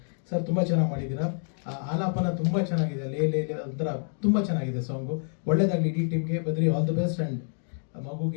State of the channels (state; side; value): silent; right; digital silence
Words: ಸರ್, ತುಂಬ ಚೆನ್ನಾಗಿ ಮಾಡಿದ್ದೀರಾ. ಆಲಾಪನ ತುಂಬ ಚೆನ್ನಾಗಿದೆ. ಲೇ ಲೇ ಒಂಥರ ತುಂಬ ಚೆನ್ನಾಗಿದೆ ಸಾಂಗು. ಒಳ್ಳೇದಾಗಲಿ ಇಡೀ ಟೀಮ್ಗೆ. Badri all the best. And